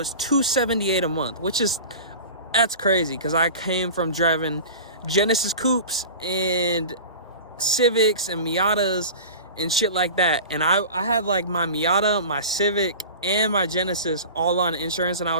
$278 a month, that's crazy because I came from driving Genesis Coupes and Civics and Miatas and shit like that, and I had like my Miata, my Civic, and my Genesis all on insurance, and I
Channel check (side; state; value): both; inverted; correlation -0.35